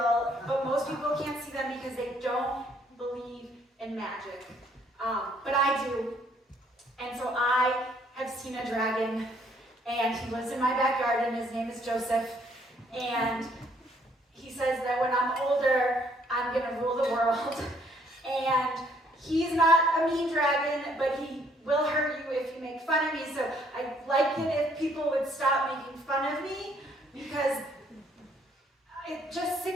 but most people can't see them because they don't believe in magic. But I do. And so I have seen a dragon, and he lives in my backyard, and his name is Joseph. And he says that when I'm older, I'm going to rule the world. And he's not a mean dragon, but he will hurt you if you make fun of me. So I'd like it if people would stop making fun of me because I'm just sick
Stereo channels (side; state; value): both; normal; correlation 0.65